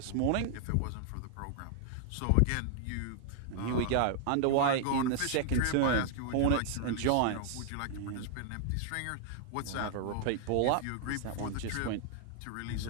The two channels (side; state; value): both; different; correlation 0.00